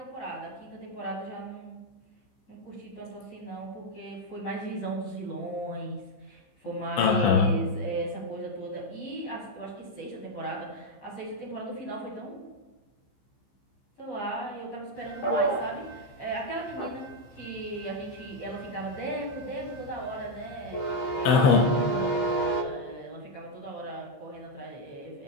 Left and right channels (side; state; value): right; late; 15 ms